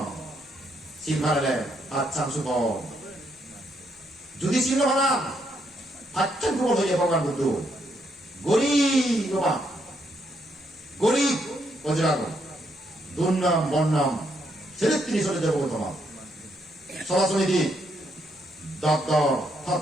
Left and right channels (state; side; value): normal; both; correlation 0.75